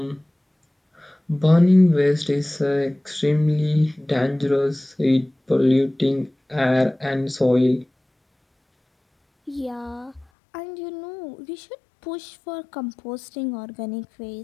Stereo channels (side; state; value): right; drops out; at 10.2 s